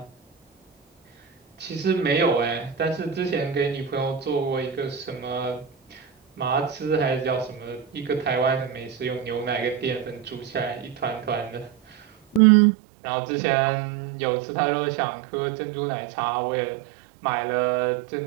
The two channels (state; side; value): drops out; left; at 12.4 s